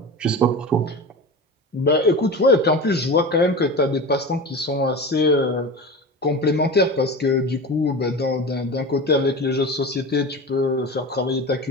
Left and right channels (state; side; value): normal; both; correlation 0.29